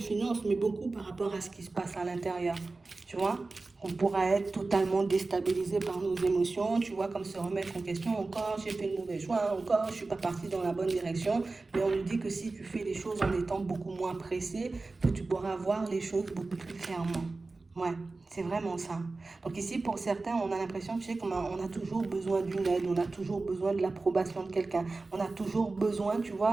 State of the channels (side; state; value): left; quieter; 3.5 dB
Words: finances, mais beaucoup par rapport à ce qui se passe à l'intérieur, tu vois. On pourra être totalement déstabilisé par nos émotions, tu vois, comme se remettre en question, encore j'ai fait le mauvais choix, encore je suis pas parti dans la bonne direction, mais on nous dit que si tu fais les choses en étant beaucoup moins pressé, que tu pourras voir les choses beaucoup plus clairement. Ouais, c'est vraiment ça. Donc ici, pour certains, on a l'impression, tu sais, on a toujours besoin d'une aide, on a toujours besoin de l'approbation de quelqu'un, on a toujours besoin, tu